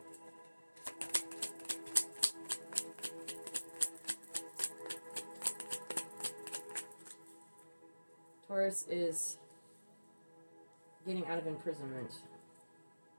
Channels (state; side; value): inverted; both; correlation -1.00